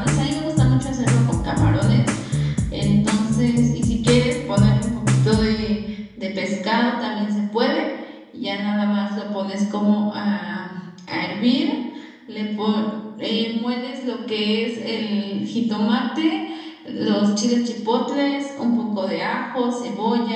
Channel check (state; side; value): identical; both; correlation 1.00